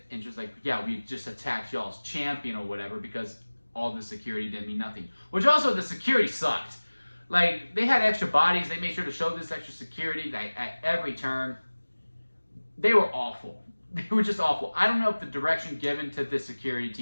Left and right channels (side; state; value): both; inverted; correlation -1.00